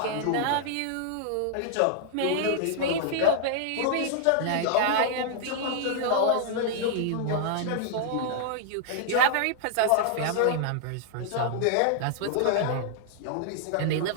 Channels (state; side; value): different; both; correlation -0.01